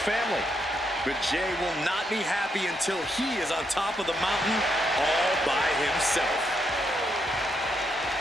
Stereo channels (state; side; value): normal; both; correlation 0.78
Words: family. But Jey will not be happy until he is on top of the mountain all by himself.